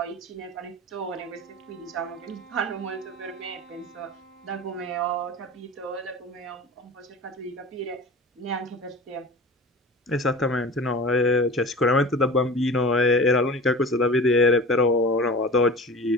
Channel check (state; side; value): normal; both; correlation 0.36